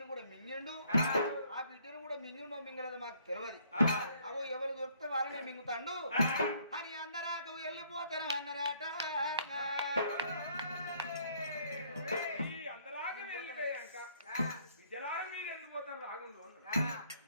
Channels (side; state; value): both; inverted; correlation -0.64